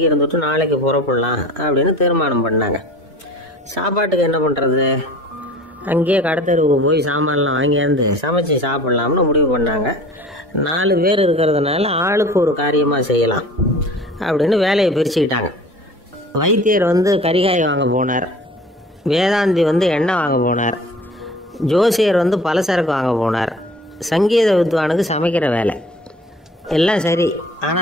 இருந்துட்டு நாளைக்கு புறப்படலாம் அப்படின்னு தீர்மானம் பண்ணாங்க. சாப்பாட்டுக்கு என்ன பண்ணுறது? அங்கேயே கடத்தெருவுக்கு போய் சாமான்லாம் வாங்கியாந்து சமைச்சு சாப்பிட்லாம்னு முடிவு பண்ணாங்க. 4 பேர் இருக்கிறதுனால ஆளுக்கு ஒரு காரியமாக செய்யலாம் அப்படின்னு வேலையை பிரிச்சுக்கிட்டாங்க. வைத்தியர் கரிகாய் வாங்க போனார். வேதாந்தி எண்ணெய் வாங்க போனார். ஜோசியர் பலசரக்கு வாங்க போனார். சங்கீத வித்வானுக்கு சமைக்கிற வேலை. எல்லாம் சரி.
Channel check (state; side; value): normal; both; correlation 0.45